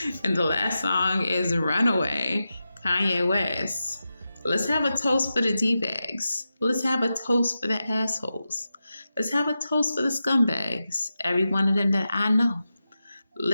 And the last song is Runaway, Kanye West. Let's have a toast for the D-bags. Let's have a toast for the assholes. Let's have a toast for the scumbags, every one of them that I know.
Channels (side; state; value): both; inverted; correlation -0.91